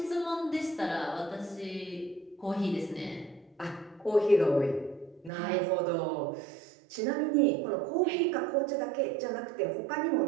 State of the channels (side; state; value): left; drops out; at 5.3 s